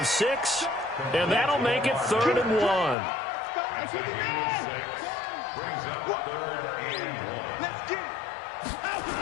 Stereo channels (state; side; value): drops out; right; at 3.0 s